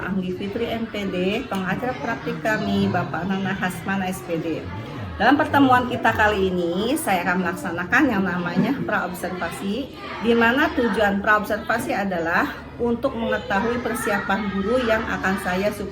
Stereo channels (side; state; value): both; identical; correlation 1.00